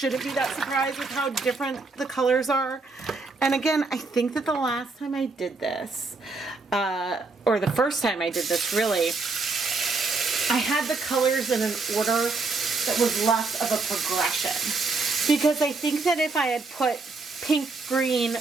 be that surprised with how different the colors are. And again, I think that the last time I did this, or the first time I did this really, I had the colors in an order that was less of a progression. Because I think that if I had put pink, green,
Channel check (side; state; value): left; quieter; 3.8 dB